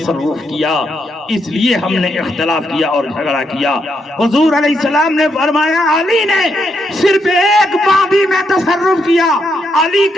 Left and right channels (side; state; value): both; normal; correlation 0.79